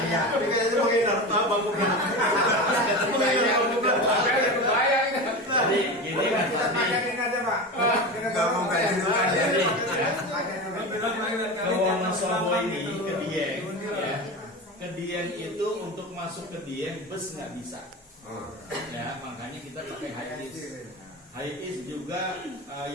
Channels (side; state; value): both; normal; correlation 0.25